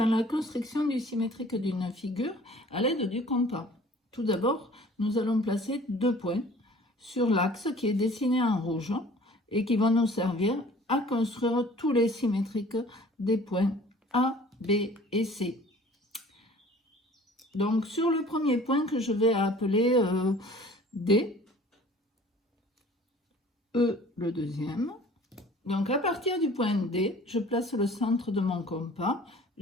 la construction du symétrique d'une figure à l'aide du compas. Tout d'abord, nous allons placer 2 points sur l'axe qui est dessiné en rouge et qui vont nous servir à construire tous les symétriques des points A, B et C. Donc sur le premier point que je vais appeler D, E le deuxième. Donc, à partir du point D, je place le centre de mon compas,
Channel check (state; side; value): normal; both; correlation 0.49